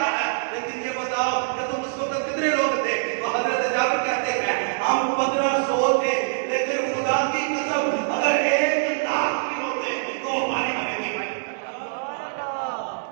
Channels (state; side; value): silent; left; digital silence